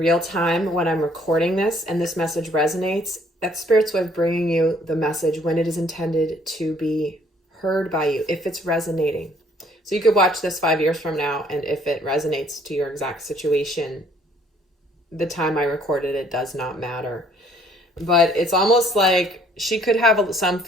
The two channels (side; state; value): both; normal; correlation 0.62